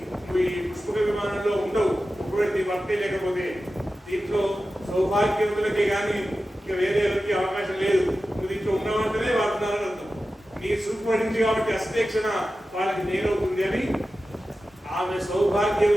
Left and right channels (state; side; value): normal; both; correlation 0.94